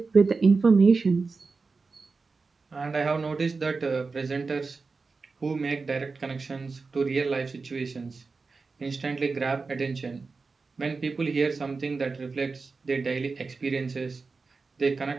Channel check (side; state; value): left; quieter; 4.3 dB